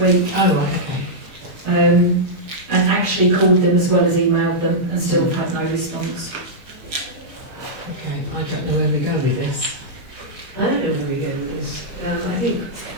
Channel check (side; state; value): left; late; 6.4 ms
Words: Oh, right, okay. and actually called them as well as emailed them, and still had no response. Okay, I don't know where we go with this. I don't know where we go with this. I think